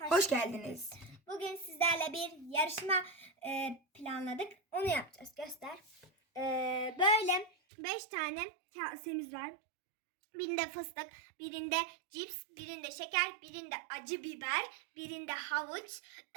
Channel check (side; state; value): left; drops out; at 7.5 s